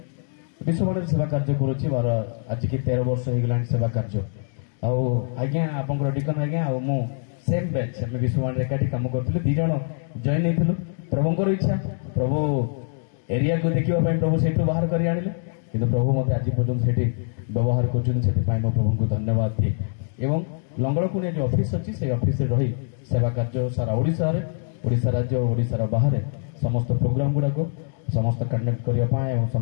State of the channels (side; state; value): right; silent; digital silence